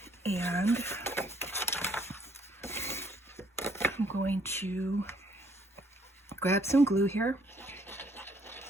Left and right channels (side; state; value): both; normal; correlation 0.65